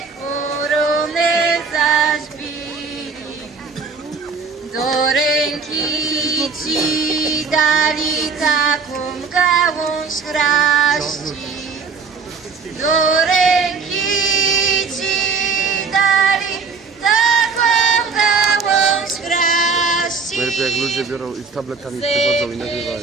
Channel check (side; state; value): left; quieter; 5.0 dB